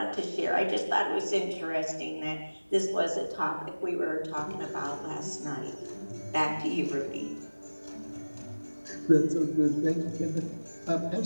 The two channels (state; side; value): inverted; both; correlation -1.00